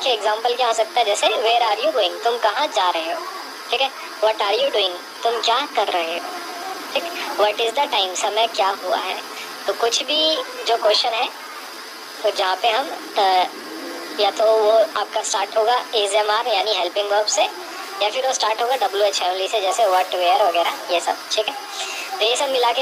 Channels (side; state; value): both; identical; correlation 1.00